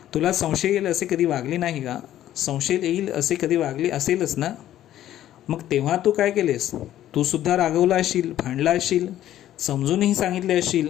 तुला संशय येईल असे कधी वागली नाही का? संशय येईल असे कधी वागली असेलच ना? मग तेव्हा तू काय केलेस? तू सुद्धा रागवला असशील, भांडला असशील, समजूनही सांगितले असशील,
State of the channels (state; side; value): quieter; right; 12.5 dB